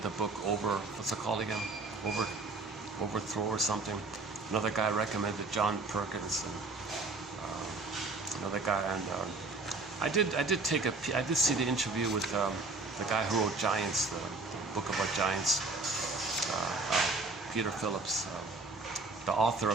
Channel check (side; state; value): left; quieter; 3.5 dB